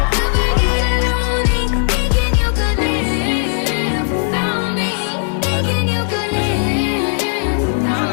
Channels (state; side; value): silent; right; digital silence